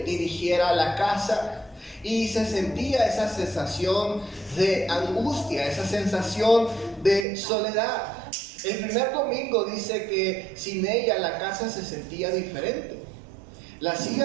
la casa, y se sentía esa sensación de angustia, esa sensación de soledad. El primer domingo dice que sin ella la casa se sentía diferente. La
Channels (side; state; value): left; drops out; at 7.2 s